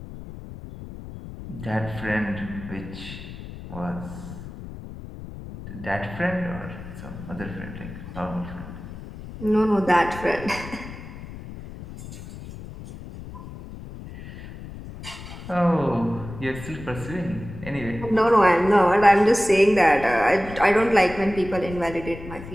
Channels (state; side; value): noise; left; rumble, 13 dB below the sound